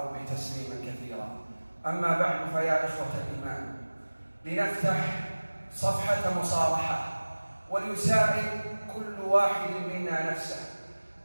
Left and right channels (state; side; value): inverted; both; correlation -1.00